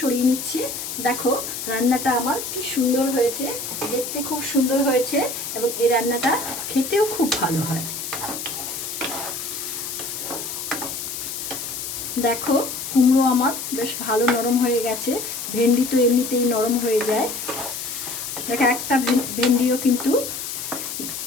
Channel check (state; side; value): noise; left; hiss, 6 dB below the sound